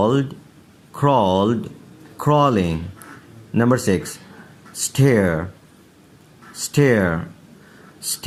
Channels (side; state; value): both; identical; correlation 1.00